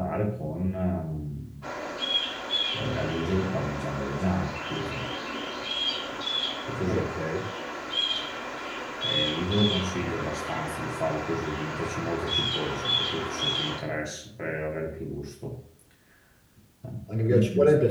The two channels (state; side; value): identical; both; correlation 1.00